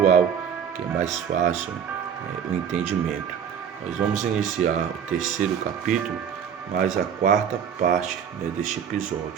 que é mais fácil o entendimento. Nós vamos iniciar o terceiro capítulo, mas a quarta parte deste episódio,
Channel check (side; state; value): left; quieter; 8.0 dB